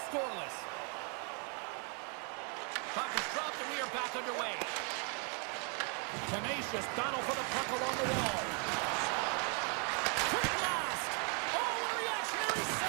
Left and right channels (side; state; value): left; quieter; 38.8 dB